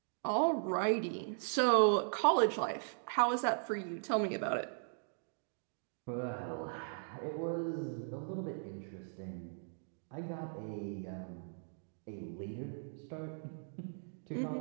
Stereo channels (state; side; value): silent; left; digital silence